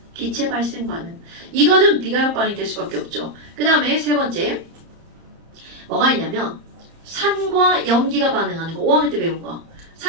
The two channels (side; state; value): left; late; 30 ms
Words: 기체 발생 반응. 이거는 비가역 반응이 될 수밖에 없죠. 그 다음에 세 번째 뭐가 있냐면 산과 연기가 반응하는 거. 5학년 때 배운 거.